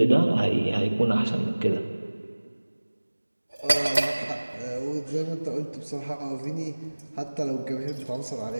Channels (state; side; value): inverted; both; correlation -1.00